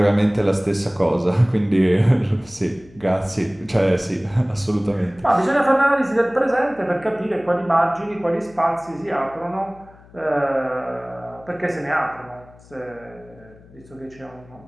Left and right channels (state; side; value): noise; left; hum, 24 dB below the sound